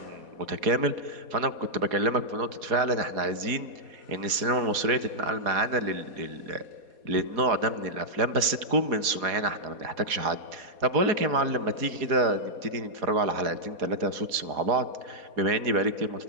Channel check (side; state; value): left; late; 4.2 ms